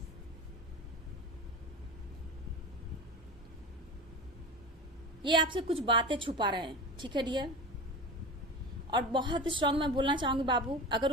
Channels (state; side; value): normal; both; correlation 0.30